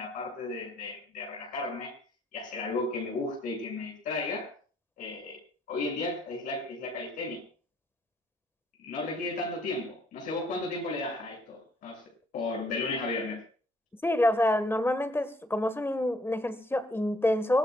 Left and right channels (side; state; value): both; normal; correlation 0.64